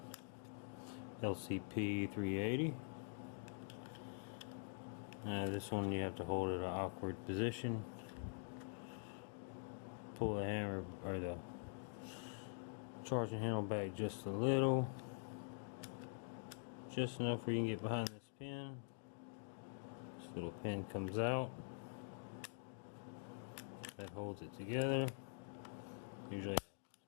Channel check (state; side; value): silent; right; digital silence